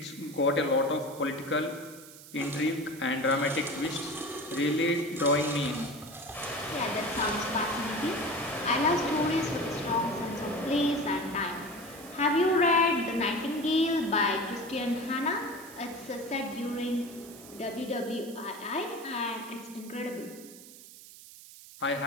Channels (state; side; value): noise; right; hiss, 18 dB below the sound